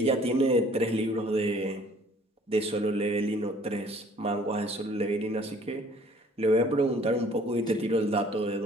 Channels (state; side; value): normal; both; correlation 0.55